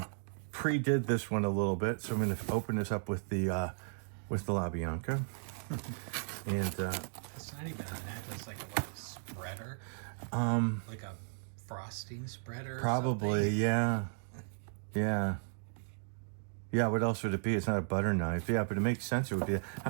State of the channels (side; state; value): left; silent; digital silence